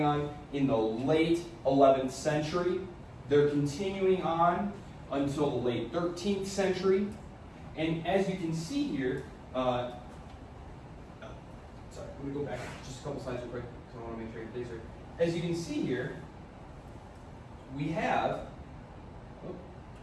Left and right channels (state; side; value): identical; both; correlation 1.00